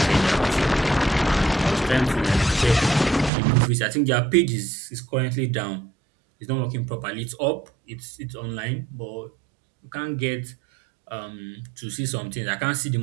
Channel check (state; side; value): drops out; left; at 3.3 s